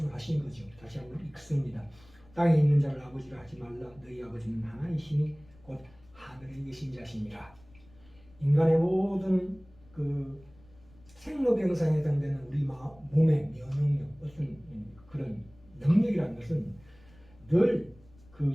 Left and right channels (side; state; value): left; noise; rumble, 26 dB below the sound